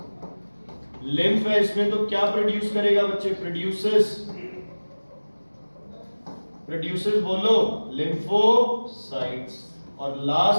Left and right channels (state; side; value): inverted; both; correlation -1.00